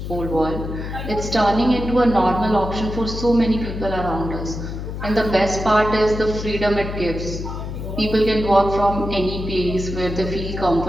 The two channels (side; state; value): left; noise; hum, 6 dB below the sound